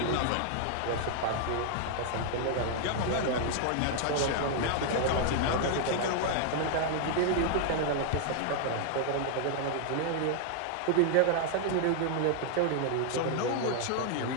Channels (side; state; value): both; different; correlation 0.00